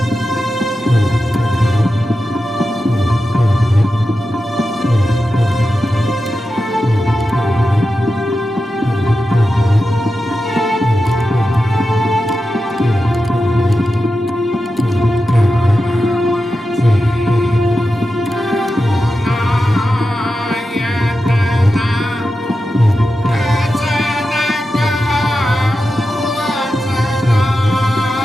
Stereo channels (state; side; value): normal; both; correlation 0.91